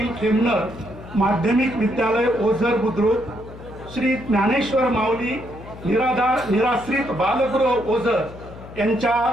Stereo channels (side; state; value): left; noise; hum, 16 dB below the sound